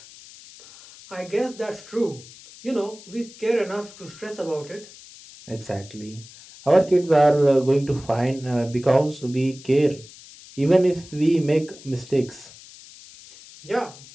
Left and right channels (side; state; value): left; noise; hiss, 20 dB below the sound